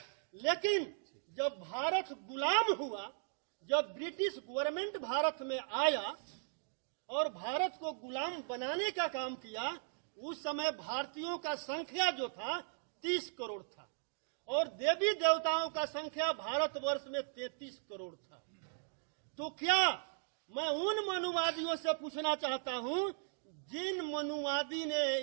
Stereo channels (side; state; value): left; silent; digital silence